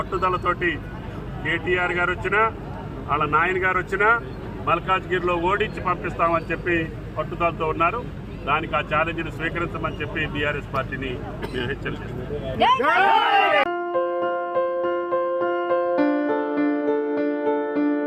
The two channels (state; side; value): identical; both; correlation 1.00